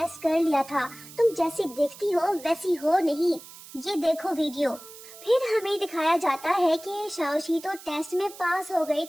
कर लिया था, तुम जैसी दिखती हो वैसी हो नहीं। ये देखो वीडियो। फिर हमें दिखाया जाता है कि शाओशी तो टेस्ट में पास हो गई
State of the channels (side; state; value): right; noise; hiss, 17 dB below the sound